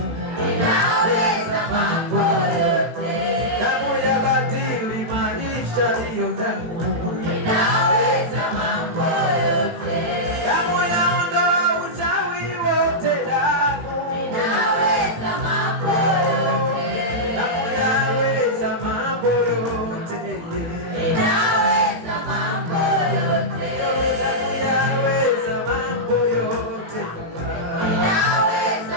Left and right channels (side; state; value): left; late; 18 ms